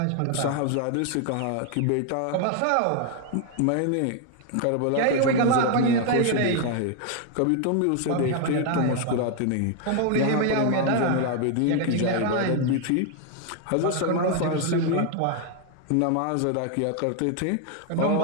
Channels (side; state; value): both; different; correlation 0.01